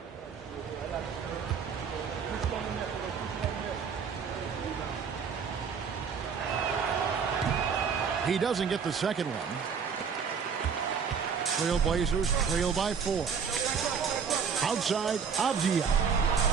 He doesn't get the second one. Trailblazers trail by 4. Outside, Avdia.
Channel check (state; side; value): quieter; left; 6.4 dB